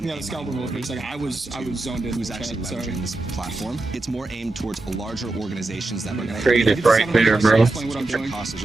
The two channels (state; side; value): quieter; left; 3.0 dB